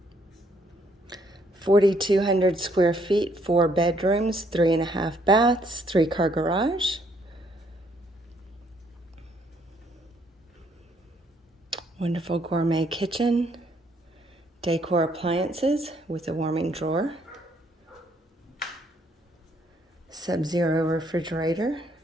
(4,200 square feet), 4 bedrooms, 3.5 baths, 3-car garage. Wonderful gourmet kitchen. Decor appliances with a warming drawer. Sub-zero refrigerator.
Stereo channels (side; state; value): both; normal; correlation 0.68